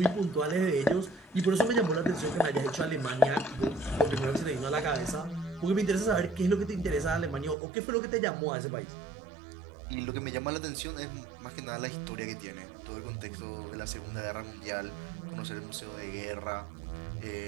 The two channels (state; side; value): drops out; left; at 7.6 s